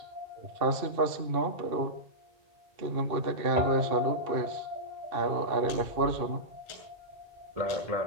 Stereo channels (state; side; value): late; left; 2.6 ms